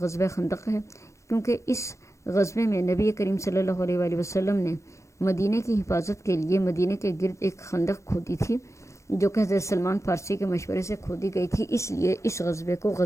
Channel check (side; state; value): right; late; 0.14 ms